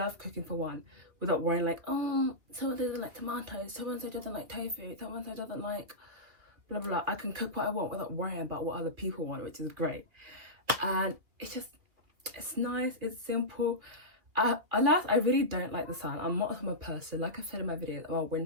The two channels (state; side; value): late; left; 2.5 ms